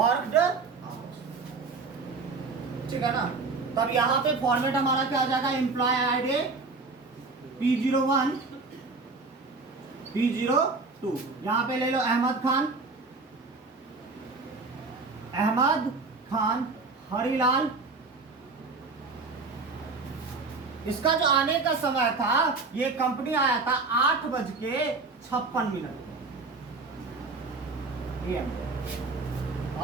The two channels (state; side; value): quieter; left; 4.0 dB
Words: आवर्स, ठीक है ना? तब यहां पे फॉर्मेट हमारा क्या आ जाएगा? एम्प्लॉय आईडी P01, P02, यहां पे ले लो अहमद खान, अहमद खान, हरिलाल। इसका जो आने का समय था, ये कंपनी आया था 8:56 AM